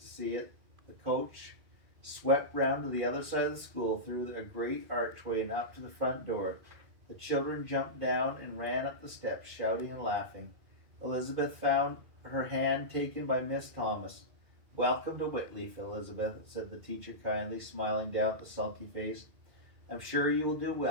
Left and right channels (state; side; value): late; left; 2.4 ms